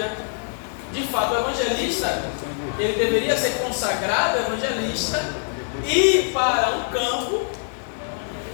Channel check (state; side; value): silent; right; digital silence